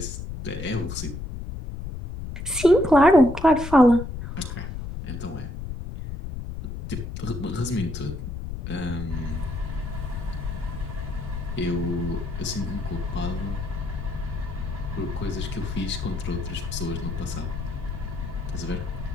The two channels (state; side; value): noise; left; rumble, 6 dB below the sound